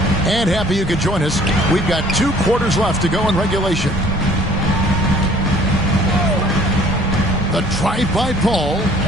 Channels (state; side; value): normal; both; correlation 0.55